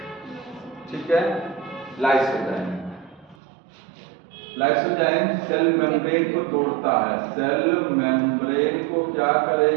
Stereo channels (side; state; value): left; drops out; at 3.4 s